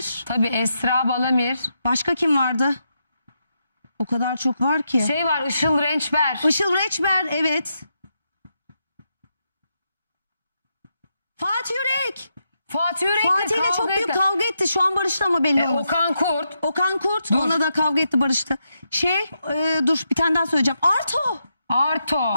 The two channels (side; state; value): both; inverted; correlation -0.83